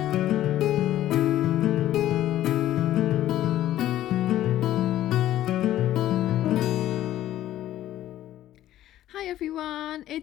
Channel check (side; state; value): right; quieter; 13.2 dB